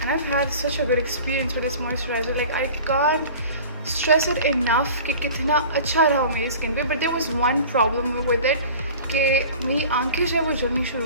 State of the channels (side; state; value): both; inverted; correlation -0.40